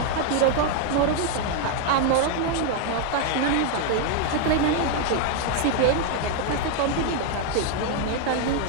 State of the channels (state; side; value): different; both; correlation 0.00